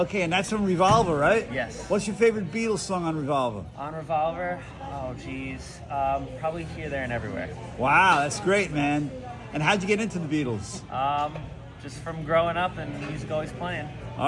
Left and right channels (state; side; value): identical; both; correlation 1.00